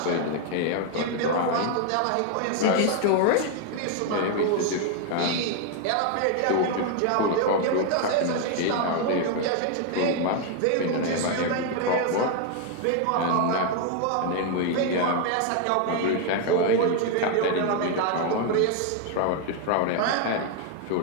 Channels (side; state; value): both; different; correlation 0.00